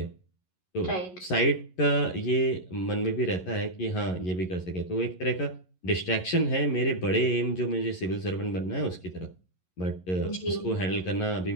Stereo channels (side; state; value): right; late; 11 ms